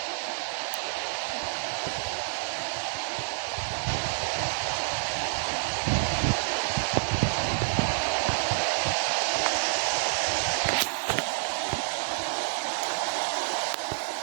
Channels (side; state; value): left; silent; digital silence